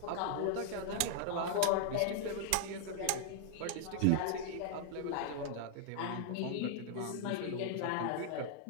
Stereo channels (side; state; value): both; different; correlation -0.01